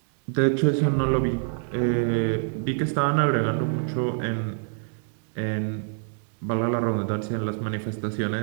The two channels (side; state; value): left; silent; digital silence